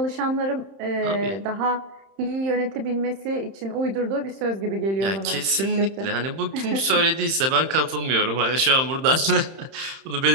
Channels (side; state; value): left; late; 31 ms